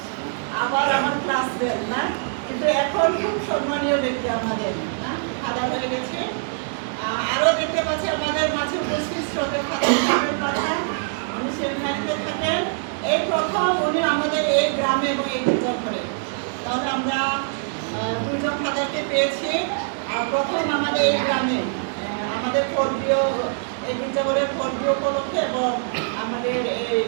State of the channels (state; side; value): silent; left; digital silence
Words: আবার আমার ক্লাসমেট না, কিন্তু এখন খুব সম্মানীয় ব্যক্তি আমাদের না, ফাদার হয়ে গেছে। আরো দেখতে পাচ্ছি আমাদের মাঝে উপস্থিত শ্রদ্ধেয় ফাদার প্রধান, উনি সেমিনারিতে থাকেন। এই প্রথম উনি আমাদের এই গ্রামে এবং এই গির্জাঘরে, তাহলে আমরা দুজন ফাদারকে পেয়েছি। আর প্রথম আমাদের এই গ্রামে আমাদের পর্বীয় এই গির্জাঘরের পর্বীয় উপলক্ষে এবং আমাদের এই